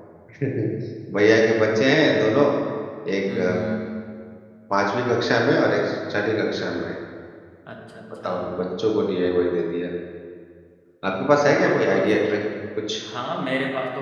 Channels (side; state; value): both; identical; correlation 1.00